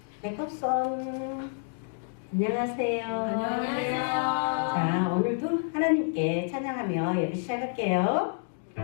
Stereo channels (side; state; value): right; silent; digital silence